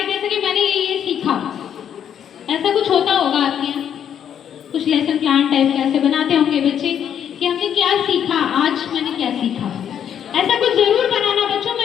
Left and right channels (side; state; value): right; quieter; 9.1 dB